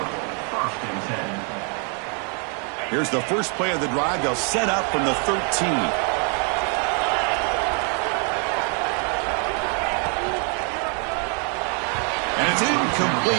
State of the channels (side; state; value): left; quieter; 39.0 dB